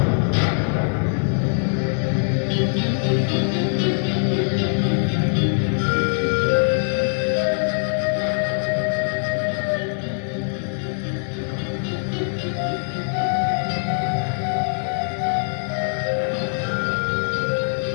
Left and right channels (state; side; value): silent; right; digital silence